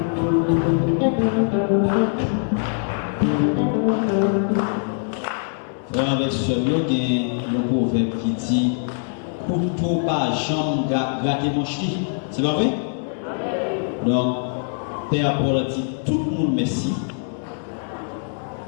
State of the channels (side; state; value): right; silent; digital silence